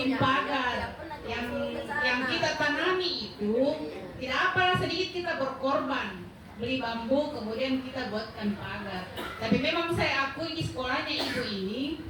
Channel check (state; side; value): identical; both; correlation 1.00